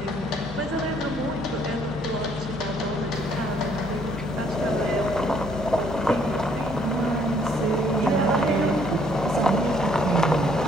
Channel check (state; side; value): normal; both; correlation 0.65